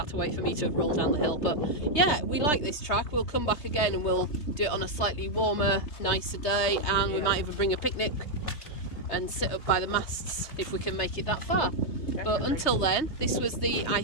to wait for me to roll down the hill. But yeah, we like this track. We'll come back again and we'll do it on a slightly warmer, nicer day, and we might even bring a picnic and sit up by the masts if we can make it that far. Definitely. But until then, this was I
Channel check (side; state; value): right; late; 3.2 ms